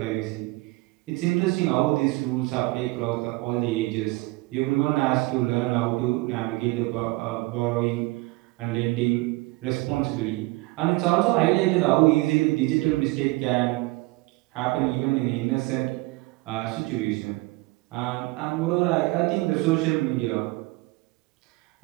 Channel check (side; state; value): left; quieter; 22.4 dB